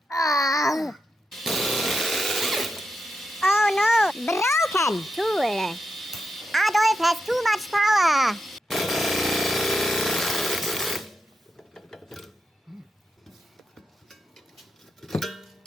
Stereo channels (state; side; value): normal; both; correlation 0.86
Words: Oh. Oh no, broken tool. Adolf has too much power.